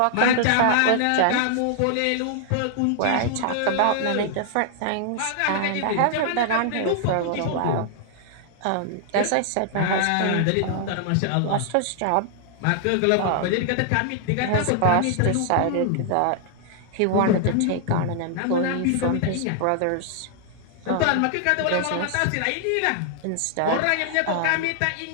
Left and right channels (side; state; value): both; different; correlation -0.01